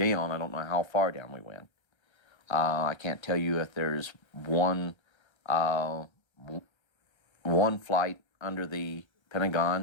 I don't know how far down we went. I can't tell you if there's one flight under the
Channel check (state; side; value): late; right; 1.3 ms